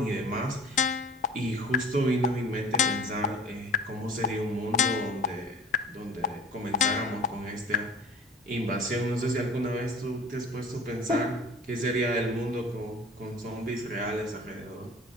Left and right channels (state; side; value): normal; both; correlation 0.43